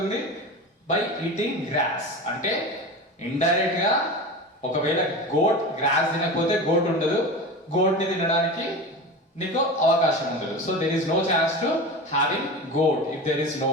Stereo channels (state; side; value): normal; both; correlation 0.28